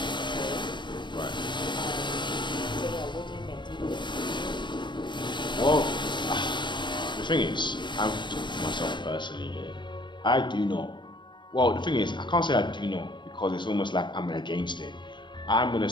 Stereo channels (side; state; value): right; late; 0.22 ms